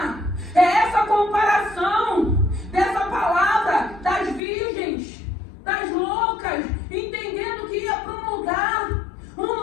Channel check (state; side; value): drops out; right; at 4.4 s